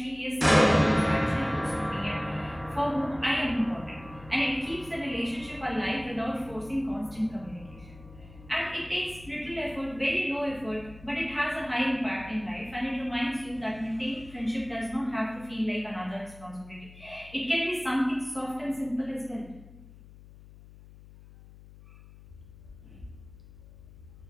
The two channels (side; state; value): left; noise; hum, 19 dB below the sound